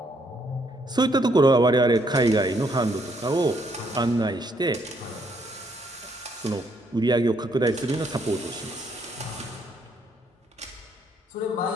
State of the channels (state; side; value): normal; both; correlation 0.71